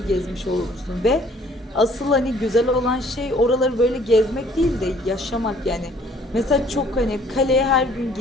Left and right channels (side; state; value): both; normal; correlation 0.58